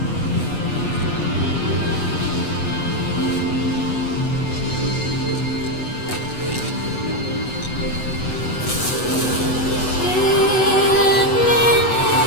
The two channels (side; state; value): right; late; 8.1 ms